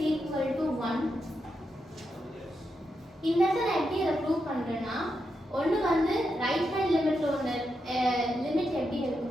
equal to 1. இந்த இடத்துல நான் எப்படி அதை ப்ரூவ் பண்றேன்னா ஒன்னு வந்து ரைட் ஹேண்ட் லிமிட்ல ஒன்னு லிமிட் எப்படி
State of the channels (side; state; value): both; normal; correlation 0.85